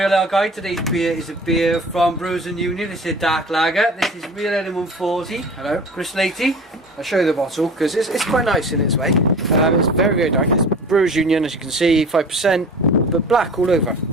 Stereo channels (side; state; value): both; normal; correlation 0.40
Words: Ale Guide. Today's beer is a beer from Brewers and Union. This is a dark lager. This is Real Ale 140. Hello. Chris Latey. I'll show you the bottle because it's quite nice in its way. It's very, very dark. It's Brewers Union, as you can see, 5%, but black all over.